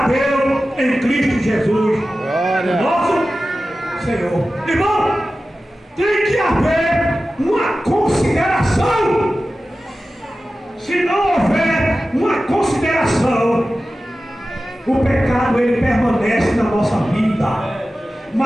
Deus em Cristo Jesus, Glória. nosso Senhor. Irmão, tem que haver uma consideração. Se não houver uma consideração, o pecado ele permanece na nossa vida.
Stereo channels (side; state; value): both; normal; correlation 0.95